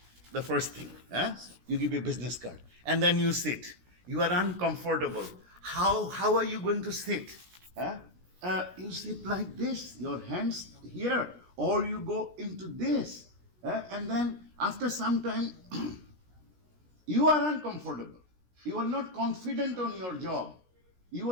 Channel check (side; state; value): left; late; 17 ms